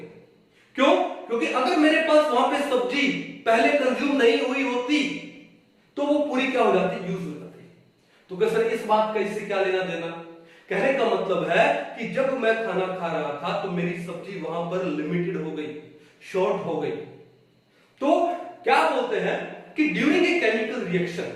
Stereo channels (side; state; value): both; identical; correlation 1.00